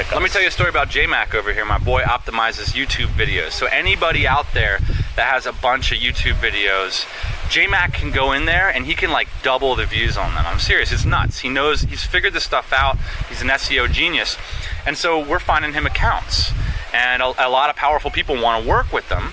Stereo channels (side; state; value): both; identical; correlation 1.00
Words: us. Let me tell you a story about J-Mac over here. My boy optimizes YouTube videos. So anybody out there that has a bunch of YouTube videos, J-Mac can go in there and he can like double the views on them. I'm serious. It's nuts. He's figured this stuff out. He's an SEO genius. And so we're finding him accounts. And a lot of powerful people want to work with them.